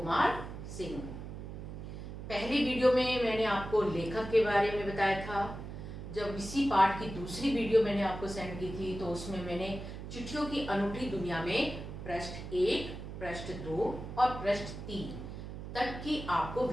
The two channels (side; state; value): right; noise; hum, 9 dB below the sound